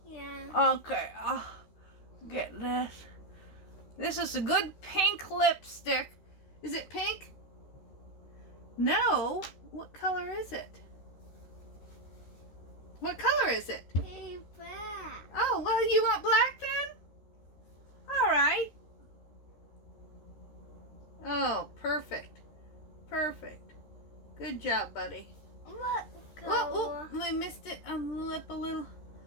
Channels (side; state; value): right; late; 13 ms